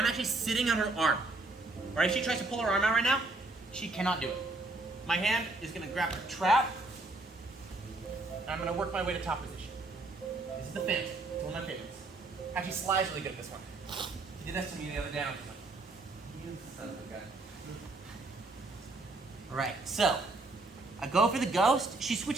actually sitting on her arm. Right? If she tries to pull her arm out right now, she cannot do it. My hand is going to grab her trap, and I'm going to work my way to top position. This is the fence. It's one of my favorites. Actually, Sly's really good at this one. He did that to me the other day. I was like, you son of a gun. Alright, so I go for the ghost. She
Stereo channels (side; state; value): left; quieter; 3.1 dB